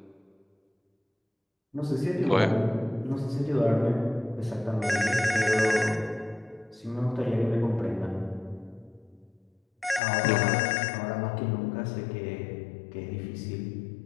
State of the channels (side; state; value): right; drops out; at 10.0 s